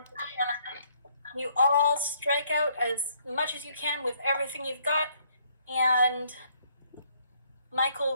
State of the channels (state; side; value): inverted; both; correlation -0.67